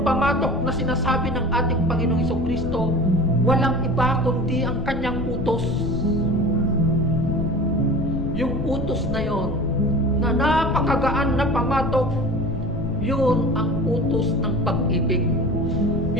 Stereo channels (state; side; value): noise; left; rumble, 5 dB below the sound